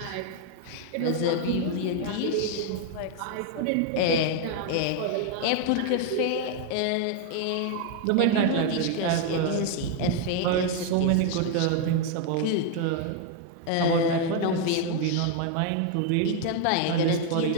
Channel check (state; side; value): different; both; correlation 0.00